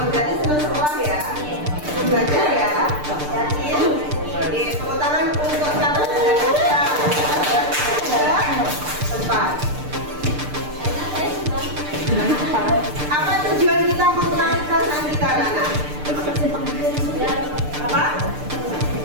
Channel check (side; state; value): left; late; 6.7 ms